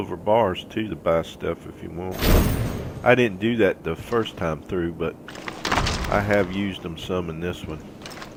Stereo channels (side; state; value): both; identical; correlation 1.00